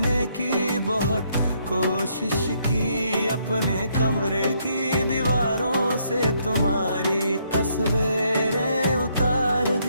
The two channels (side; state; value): both; inverted; correlation -0.72